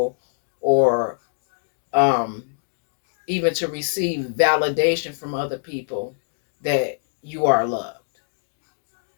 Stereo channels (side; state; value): right; silent; digital silence